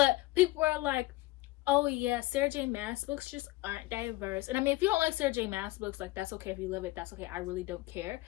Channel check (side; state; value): right; quieter; 19.5 dB